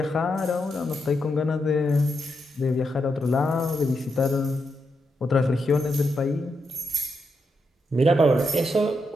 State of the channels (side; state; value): both; normal; correlation 0.83